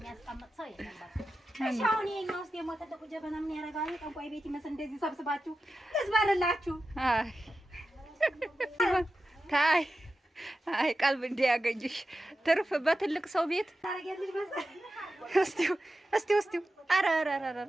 ሰው የለም። በቃ እሺ አሁን የኛው ውስጥ ደግሞ ትልቁ ጀበና ምን ያደርጋል? ጠንቋይ ቤት ይመስል እንደዚህ ሰብስባችሁ ልዝበርላችሁ። አይ ቀልብ እንዲያገኝሽ ትርፍ በትልቅ ሰው ቤት ታረጋለሽ መሰል። እስቲ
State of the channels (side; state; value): both; normal; correlation 0.92